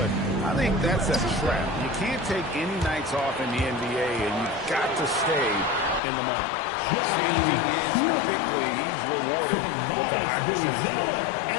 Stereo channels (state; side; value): drops out; right; at 6.0 s